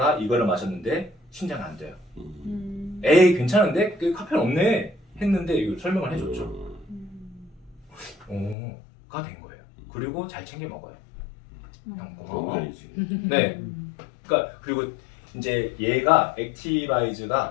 이거를 마셨는데 심장이 안 돼요. 에이 괜찮은데? 카페인 없네 했는데 이걸 설명을 해줬죠. 가 된 거예요. 그리고 잘 챙겨 먹어요. 형 고마워. 네. 그러니까 그리고 이제 얘가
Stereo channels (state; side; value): drops out; right; at 8.6 s